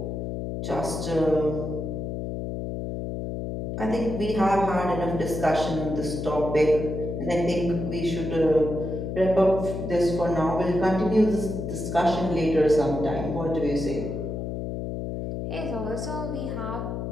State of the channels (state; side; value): noise; left; hum, 4 dB below the sound